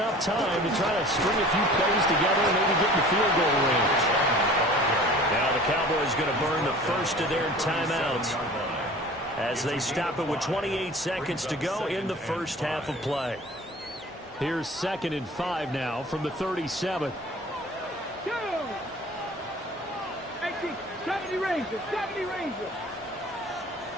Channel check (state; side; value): normal; both; correlation 0.44